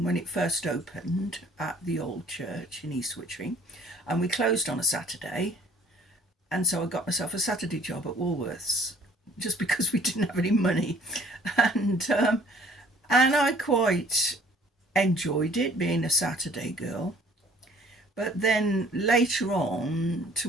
when it first opened at the old church in East Wittering, and we closed on a Saturday, and so I got myself a Saturday job at Woolworths just because we didn't have any money, and I quite enjoyed it being a Saturday girl. But then later on,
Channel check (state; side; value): normal; both; correlation 0.57